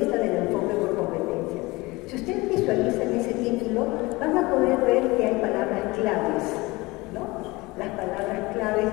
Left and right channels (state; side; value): quieter; right; 22.5 dB